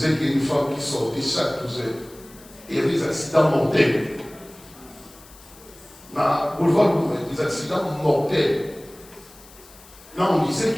qu'il y a une femme qui sortait chaque 12 heures. Et il y avait des accidents mortels. Dans le boulevard, des accidents mortels. Là, on disait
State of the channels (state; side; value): noise; left; hiss, 22 dB below the sound